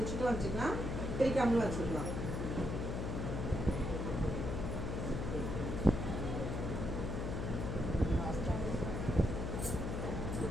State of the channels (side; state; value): left; noise; hum, 2 dB below the sound